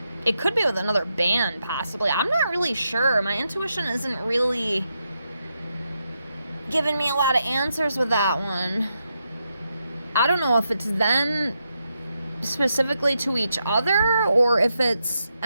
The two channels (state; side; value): inverted; both; correlation -0.84